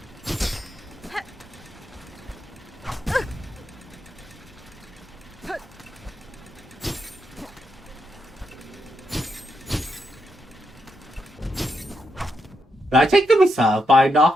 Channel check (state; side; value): normal; both; correlation 0.82